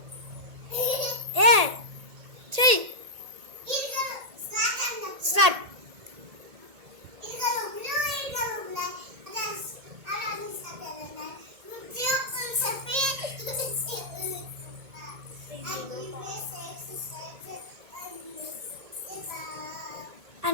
ఏ చెయ్యి స్టార్ట్.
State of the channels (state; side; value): late; left; 1.8 ms